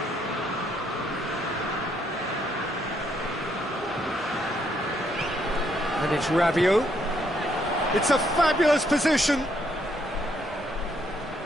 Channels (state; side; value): normal; both; correlation 0.72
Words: And it's Rabiot. It's a fabulous position.